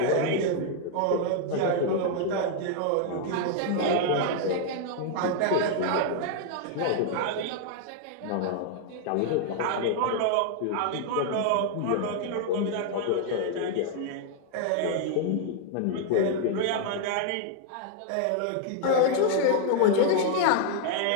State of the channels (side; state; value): both; different; correlation 0.00